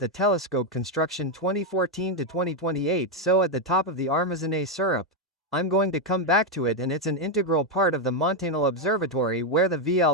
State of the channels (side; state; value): both; normal; correlation 0.04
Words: telescope construction 2014 to 2028. So at the top of the Armazené syrup, I'm going to come back to it, and it's an integral part of the Montanal Observatory where the